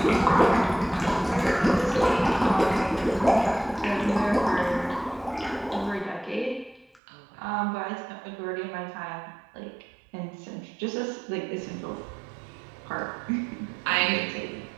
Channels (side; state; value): left; drops out; at 7.0 s